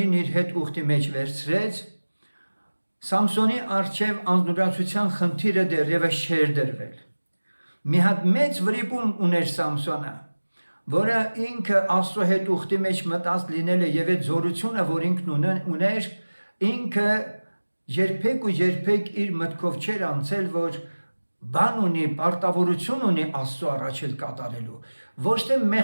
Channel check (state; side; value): inverted; both; correlation -1.00